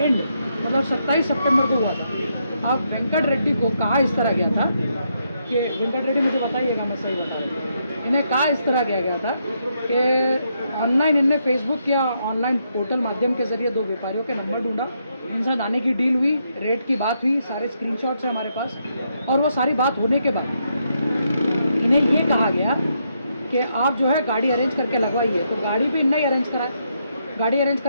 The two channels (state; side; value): inverted; both; correlation -0.78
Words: मतलब 27 सितंबर को हुआ था। अब वेंकट रेड्डी को कहा इस तरह गया था कि वेंकट रेड्डी मुझे बताइएगा, मैं सही बता रहा हूँ। इन्हें कहा इस तरह किया गया था कि ऑनलाइन इनने फेसबुक या ऑनलाइन पोर्टल माध्यम के जरिए दो व्यापारियों के नंबर ढूंढा, इनसे आने की डील हुई, रेट की बात हुई, सारे स्क्रीनशॉट्स हैं हमारे पास। और वो सारी बात होने के बाद इन्हें ये कहा गया कि आप जो है गाड़ी अरेंज करके लगवाइए। तो गाड़ी भी इन्हें ही अरेंज कराए, गाड़ी अरेंज